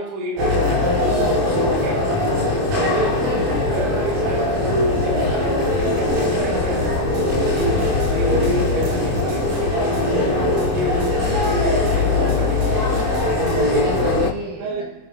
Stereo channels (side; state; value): left; late; 27 ms